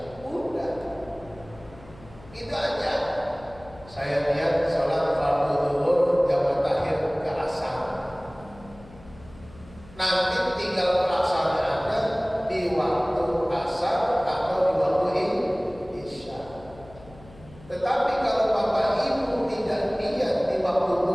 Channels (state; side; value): noise; left; hum, 22 dB below the sound